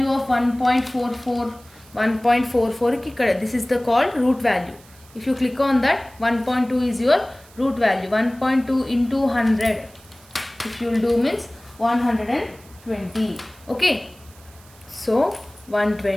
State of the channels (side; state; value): right; noise; hiss, 25 dB below the sound